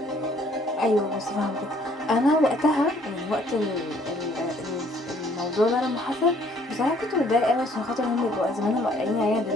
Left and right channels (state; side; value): normal; both; correlation 0.61